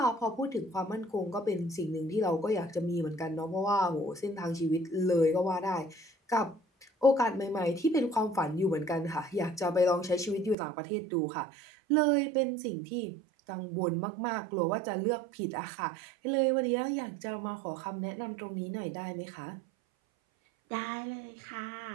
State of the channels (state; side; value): drops out; left; at 10.6 s